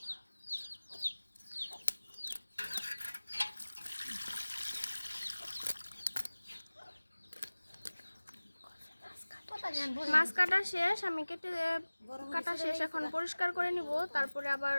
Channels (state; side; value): inverted; both; correlation -1.00